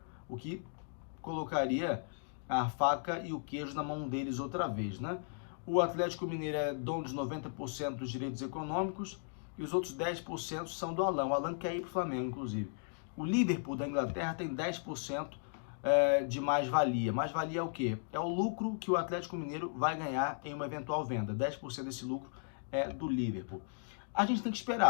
o que colocaria a faca e o queijo na mão deles outra vez, né? O Atlético Mineiro é dono de 90% dos direitos econômicos e os outros 10% são do Alan. O Alan quer ir para o Flamengo, inclusive. O Liverpool da Inglaterra tem 10% de mais-valia. Mais-valia é o quê? É o lucro que o Atlético Mineiro vai ganhar em uma eventual venda. 10% desse lucro é do Liverpool. A gente tem que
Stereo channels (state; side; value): silent; right; digital silence